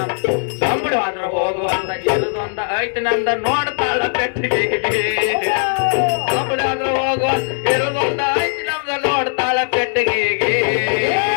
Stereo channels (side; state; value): right; silent; digital silence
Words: ದಬಡವಾದ್ರ ಹೋಗುವಂತ ಇರುದೊಂದ ಐತಿ ನಂದ ನೋಡ್ತಾಳ ಪೆಟ್ಟಿಗೆ ದಬಡಾದ್ರ ಹೋಗುವ ಇರುದೊಂದ ಐತಿ ನಮ್ದ ನೋಡ್ತಾಳ ಪೆಟ್ಟಿಗೆ